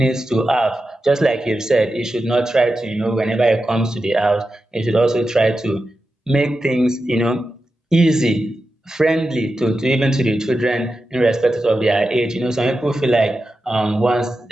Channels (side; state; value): both; normal; correlation 0.91